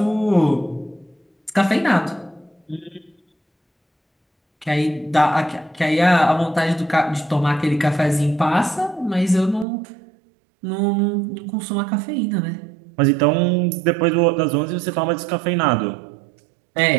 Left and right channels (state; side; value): drops out; left; at 9.7 s